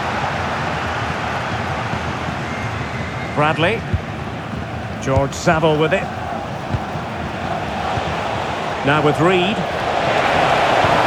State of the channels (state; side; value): identical; both; correlation 1.00